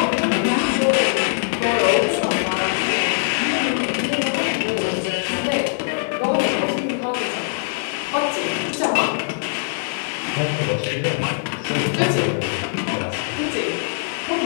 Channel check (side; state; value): right; silent; digital silence